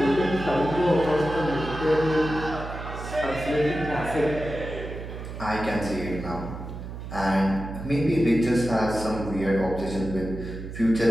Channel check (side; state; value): right; noise; hum, 9 dB below the sound